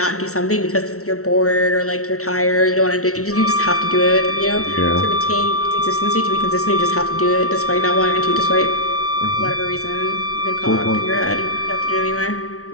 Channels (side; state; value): right; late; 0.64 ms